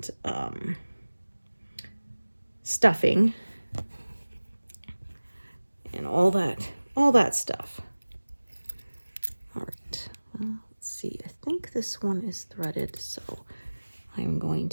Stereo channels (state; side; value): inverted; both; correlation -1.00